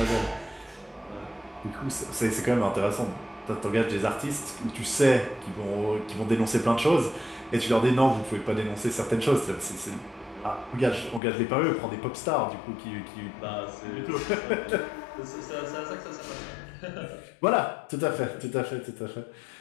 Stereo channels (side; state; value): right; drops out; at 11.2 s